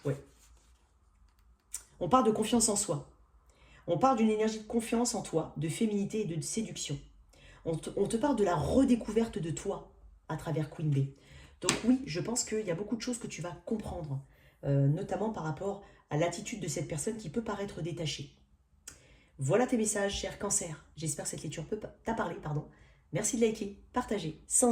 Ouais. On parle de confiance en soi. On parle d'une énergie de confiance en toi, de féminité et de séduction. On te parle de la redécouverte de toi à travers Queen B. Donc oui, je pense qu'il y a beaucoup de choses que tu vas comprendre, notamment par rapport à l'attitude de cette personne qui peut paraître détachée. Voilà tes messages, cher Cancer. J'espère que cette lecture t'a parlé, pardon. Merci de liker, partager,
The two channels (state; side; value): identical; both; correlation 1.00